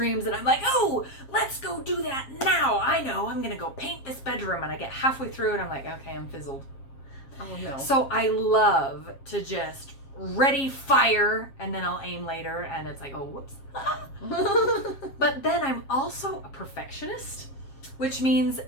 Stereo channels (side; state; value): right; late; 7.4 ms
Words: and I'm like, oh, let's go do that now. I know, I'm going to go paint this bedroom. And I get halfway through and I'm like, okay, I'm fizzled. Oh, no. So I love to just ready, fire, and then I'll aim later and it's like, oh, whoops. But then I'm also a perfectionist, which means